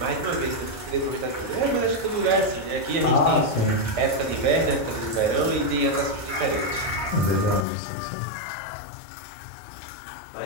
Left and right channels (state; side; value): drops out; right; at 7.7 s